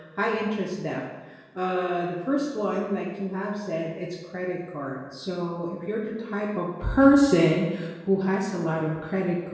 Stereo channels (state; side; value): identical; both; correlation 1.00